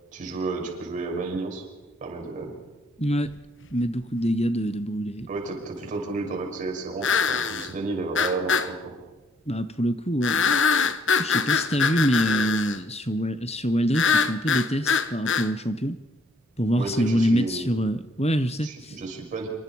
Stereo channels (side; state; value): both; normal; correlation 0.66